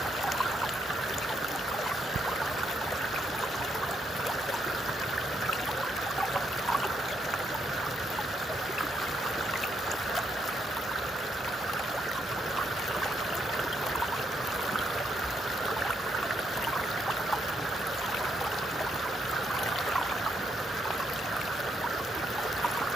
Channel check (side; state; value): both; normal; correlation 0.76